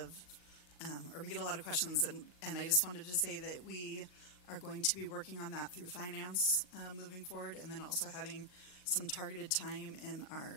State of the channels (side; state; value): right; late; 39 ms